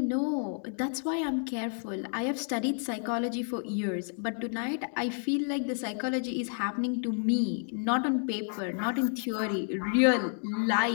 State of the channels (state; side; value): silent; right; 58 dB below the other